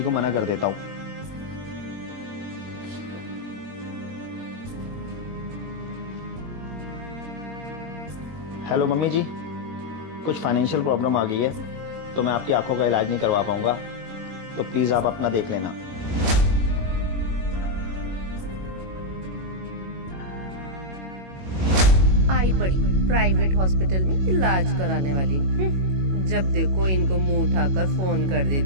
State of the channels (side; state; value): left; late; 22 ms